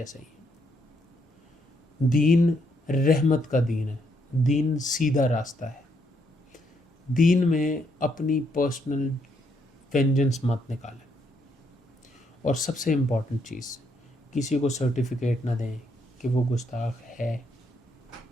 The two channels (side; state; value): both; normal; correlation 0.74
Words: ہی ہیں. دین رحمت کا دین ہے، دین سیدھا راستہ ہے. دین میں اپنی پرسنل وینجنس مت نکالیں. اور سب سے امپورٹنٹ چیز، کسی کو سرٹیفکیٹ نہ دیں کہ وہ گستاخ ہے